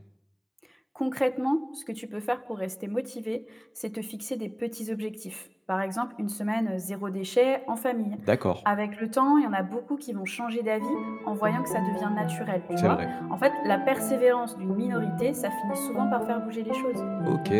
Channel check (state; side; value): identical; both; correlation 1.00